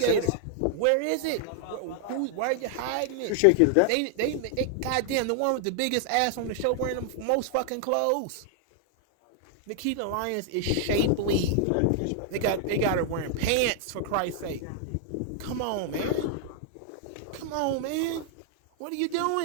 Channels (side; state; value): both; different; correlation 0.00